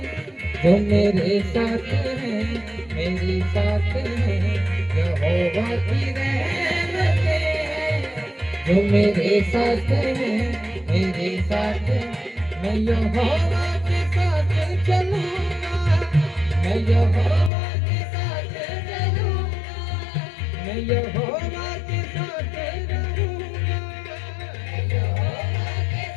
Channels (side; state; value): right; drops out; at 17.5 s